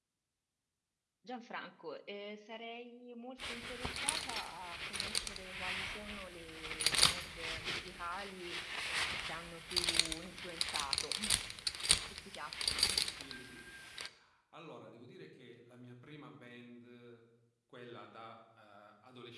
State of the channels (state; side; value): identical; both; correlation 1.00